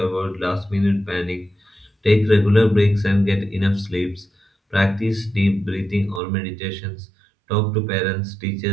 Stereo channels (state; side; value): drops out; left; at 6.2 s